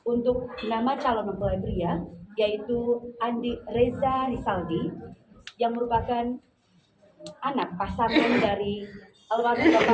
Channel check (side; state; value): both; identical; correlation 1.00